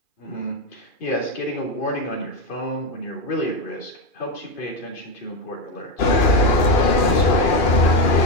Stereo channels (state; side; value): late; right; 2.4 ms